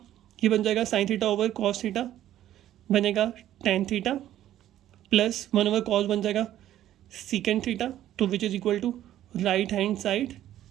ये बन जाएगा sine theta over cos theta, बनेगा tan theta plus 1 over cos बन जाएगा सीकेंड थीटा, तो which is equal to right hand side,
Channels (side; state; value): left; quieter; 12.4 dB